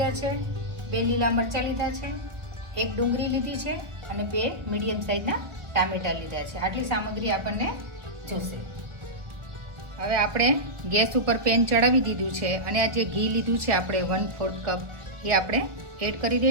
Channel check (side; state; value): left; late; 1.6 ms